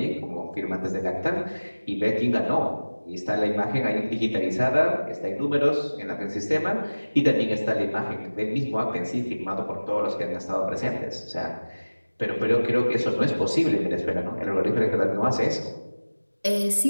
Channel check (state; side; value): inverted; both; correlation -1.00